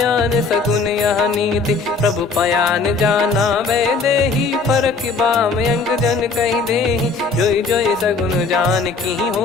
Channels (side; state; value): right; quieter; 4.2 dB